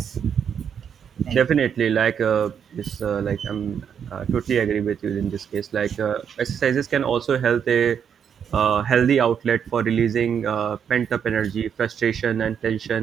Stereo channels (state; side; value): quieter; left; 7.8 dB